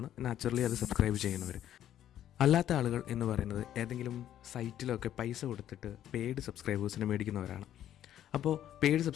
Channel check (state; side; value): quieter; right; 11.4 dB